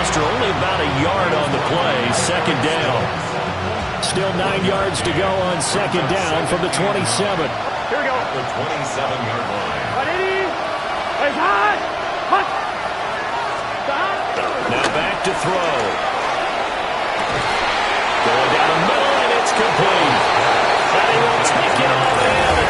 only about a yard on the play. 2nd down. Still 9 yards to go on 2nd down from the 27. Here we go. The 27-yard line. Ready? It's hot. Stop. Now back to throw. Going down the middle, and it's complete. And he will take it all in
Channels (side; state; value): both; identical; correlation 1.00